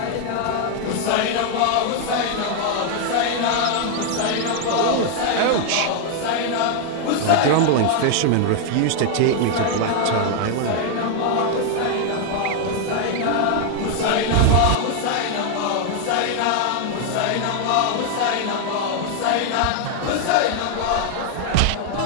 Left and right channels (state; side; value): different; both; correlation 0.00